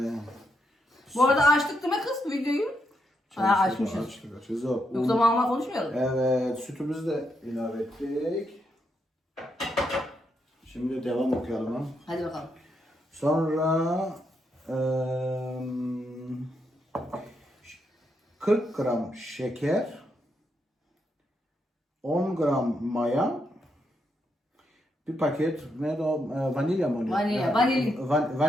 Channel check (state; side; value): normal; both; correlation 0.80